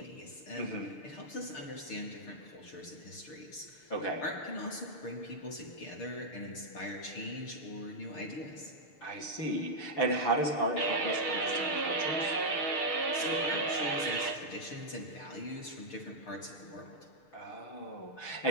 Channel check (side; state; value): right; late; 6.6 ms